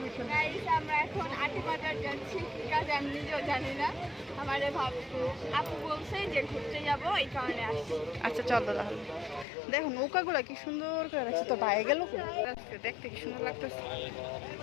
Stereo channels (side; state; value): right; drops out; at 9.5 s